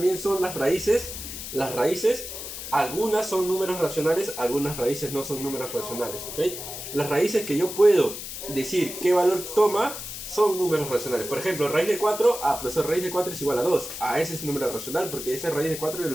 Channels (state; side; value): noise; left; hiss, 9 dB below the sound